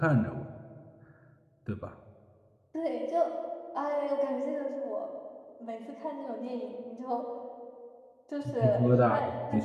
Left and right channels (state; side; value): identical; both; correlation 1.00